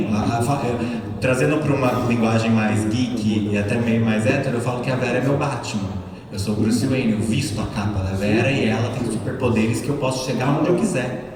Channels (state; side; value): identical; both; correlation 1.00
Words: Trazendo para uma linguagem mais geek e até meio mais hétero, eu falo que a Vera é meu Batman. Eu sou o Bruce Wayne, eu visto a capa da Vera e ela tem superpoderes que eu posso chegar onde eu